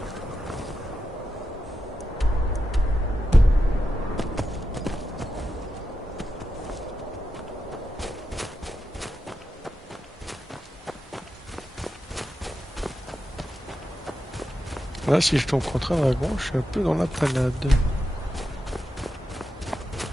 Là, si je tombe contre un dragon, je suis un peu dans la panade.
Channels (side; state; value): both; normal; correlation 0.88